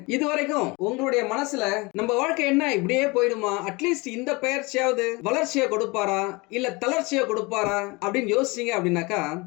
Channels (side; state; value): right; quieter; 25.6 dB